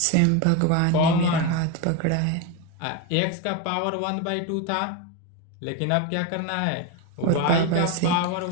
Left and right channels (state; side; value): different; both; correlation 0.03